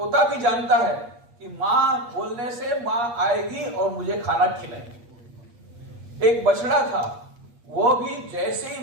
भी जानता है कि माँ बोलने से माँ आएगी और मुझे खाना खिलाएगी। एक बछड़ा था, वो भी जैसे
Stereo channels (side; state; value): left; late; 8.4 ms